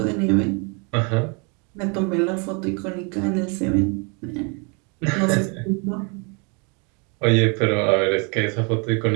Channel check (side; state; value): left; quieter; 33.7 dB